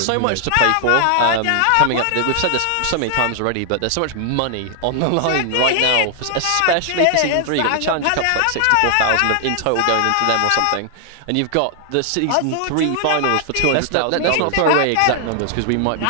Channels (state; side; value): different; both; correlation 0.00